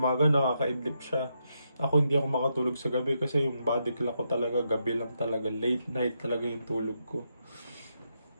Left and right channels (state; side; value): inverted; both; correlation -0.82